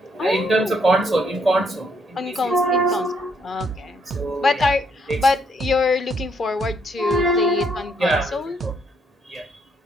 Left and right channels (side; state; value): both; normal; correlation 0.72